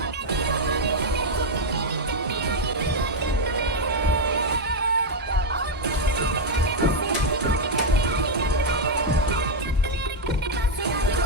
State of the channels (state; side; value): normal; both; correlation -0.01